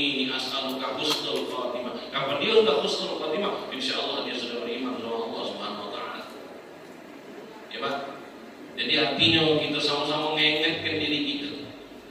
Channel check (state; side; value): identical; both; correlation 1.00